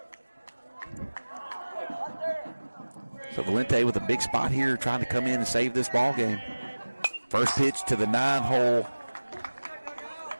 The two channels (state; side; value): inverted; both; correlation -1.00